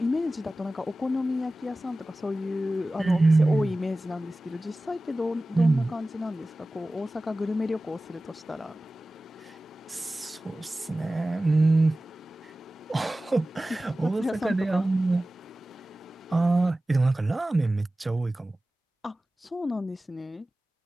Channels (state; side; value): normal; both; correlation 0.96